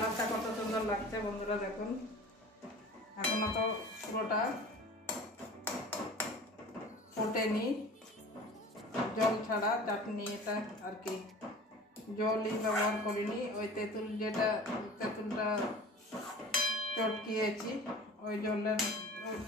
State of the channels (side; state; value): both; normal; correlation 0.41